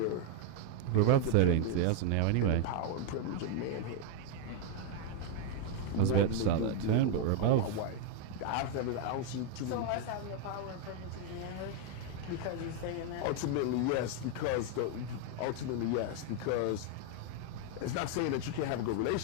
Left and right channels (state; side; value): different; both; correlation 0.00